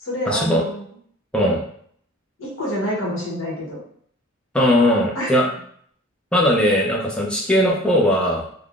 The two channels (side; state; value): both; normal; correlation 0.45